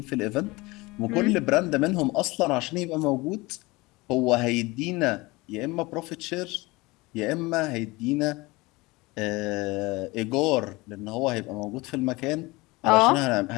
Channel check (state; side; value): quieter; right; 22.6 dB